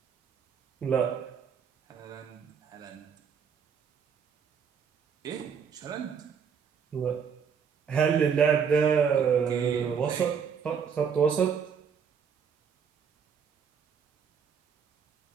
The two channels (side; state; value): left; quieter; 6.9 dB